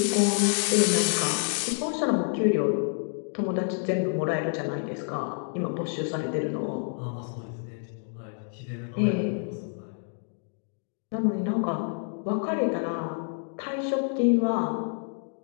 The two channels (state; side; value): silent; right; 59 dB below the other